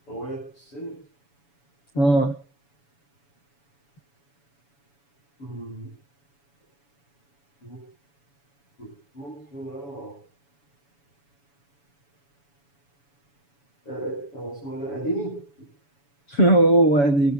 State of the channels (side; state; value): right; late; 7.1 ms